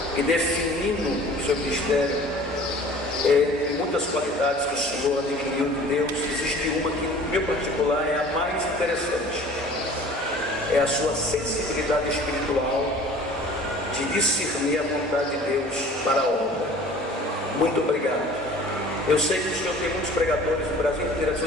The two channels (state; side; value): normal; both; correlation 0.46